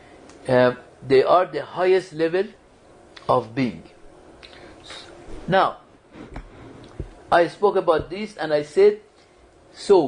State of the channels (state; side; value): identical; both; correlation 1.00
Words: they are the highest level of being. Now, I spoke about this and I said, so